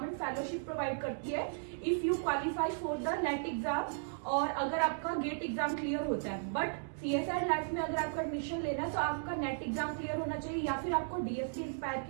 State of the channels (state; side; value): silent; left; digital silence